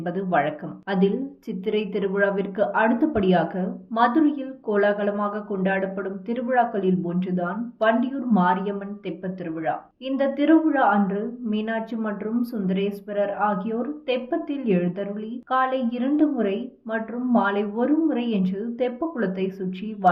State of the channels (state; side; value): identical; both; correlation 1.00